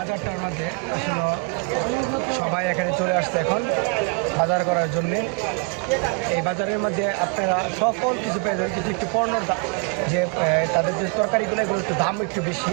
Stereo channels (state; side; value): quieter; left; 34.1 dB